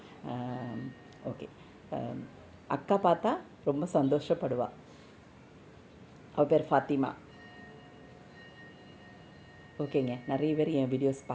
ஓகே, அக்கா பார்த்தா ரொம்ப சந்தோஷப்படுவா. அவள் பேர் ஃபாத்திமா. ஓகேங்க, நிறைய பேர் என் வீடியோஸ்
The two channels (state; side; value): identical; both; correlation 1.00